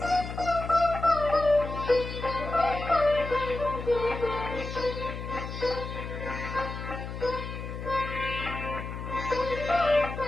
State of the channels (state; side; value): noise; left; hum, 7 dB below the sound